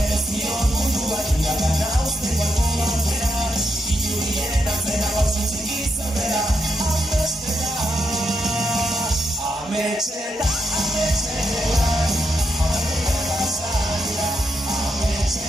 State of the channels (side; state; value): both; normal; correlation 0.82